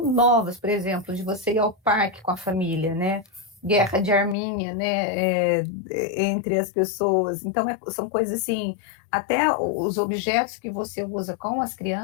por exemplo, de você ir ao parque com a família, né? Guerra de Armínia, né? Entre as pessoas. Então, são coisas assim, até os objetos que você usa com as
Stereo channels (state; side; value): drops out; right; at 4.4 s